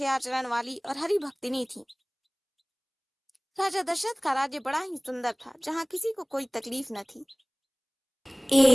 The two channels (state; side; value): identical; both; correlation 1.00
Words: आचरण वाली और हरि भक्तिनी थीं। राजा दशरथ का राज्य बड़ा ही सुंदर था, जहाँ किसी को कोई तकलीफ न थी।